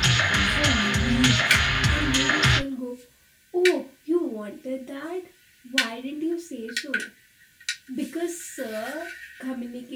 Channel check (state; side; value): identical; both; correlation 1.00